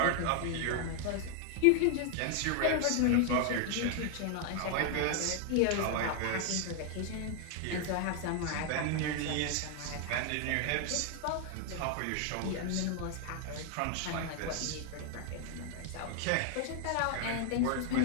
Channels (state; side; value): different; both; correlation 0.00